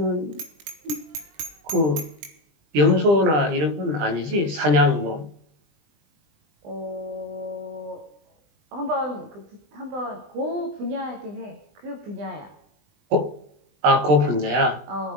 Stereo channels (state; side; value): late; left; 20 ms